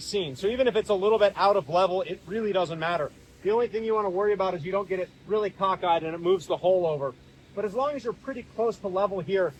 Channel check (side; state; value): both; identical; correlation 1.00